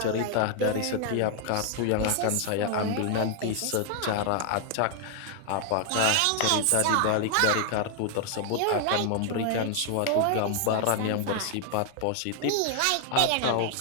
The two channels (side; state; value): both; different; correlation 0.00